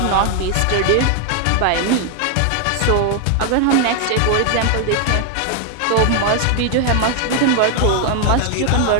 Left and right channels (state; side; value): different; both; correlation 0.00